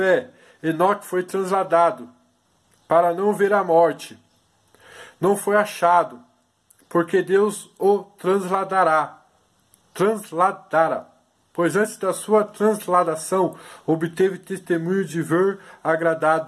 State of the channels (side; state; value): both; identical; correlation 1.00